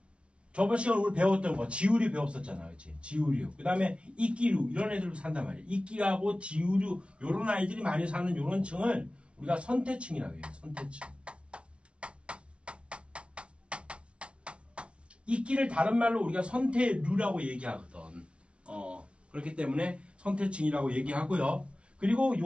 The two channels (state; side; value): late; left; 0.060 ms